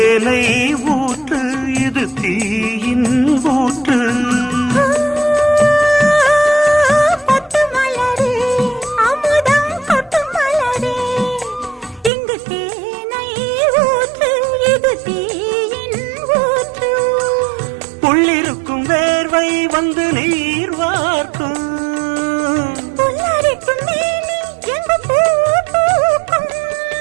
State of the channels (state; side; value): drops out; left; at 12.1 s